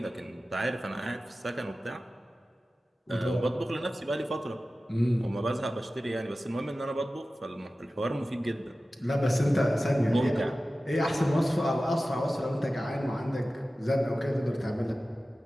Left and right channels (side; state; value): both; normal; correlation 0.95